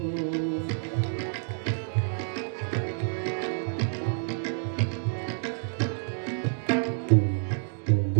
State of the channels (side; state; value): left; silent; digital silence